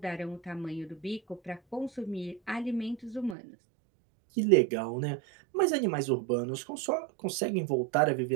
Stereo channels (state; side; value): drops out; left; at 3.4 s